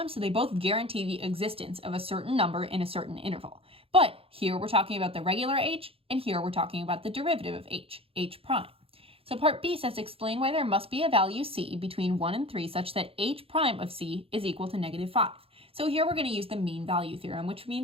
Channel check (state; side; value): late; left; 0.27 ms